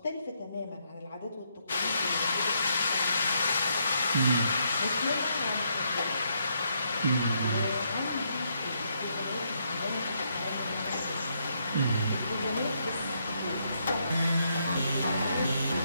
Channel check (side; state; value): both; inverted; correlation -0.75